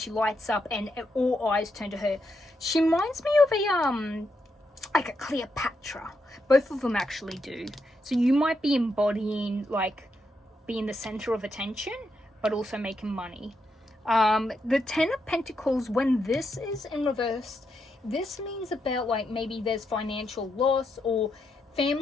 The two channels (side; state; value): both; normal; correlation 0.82